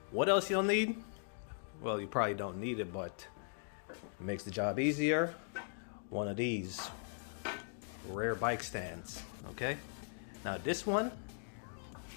What else you'll need? Well, you probably don't need it, but it makes the job easier. One of these rear bike stands. Okay, now this one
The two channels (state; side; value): silent; right; digital silence